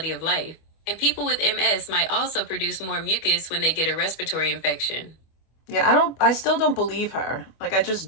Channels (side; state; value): right; late; 25 ms